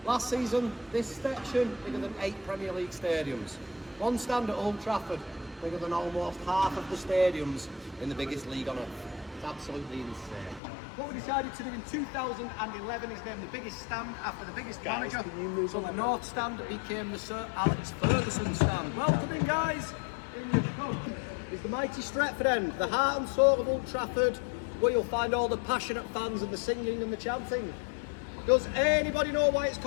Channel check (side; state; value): right; drops out; at 10.6 s